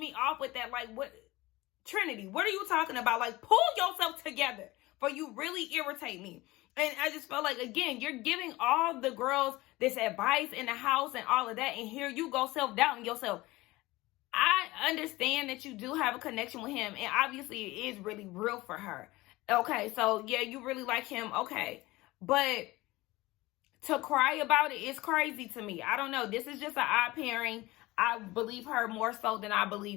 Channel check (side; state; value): right; quieter; 19.9 dB